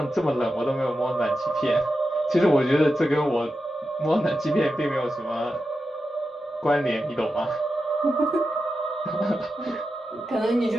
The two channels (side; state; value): both; normal; correlation 0.90